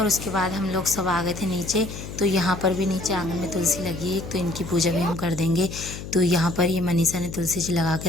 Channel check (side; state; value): left; noise; hum, 10 dB below the sound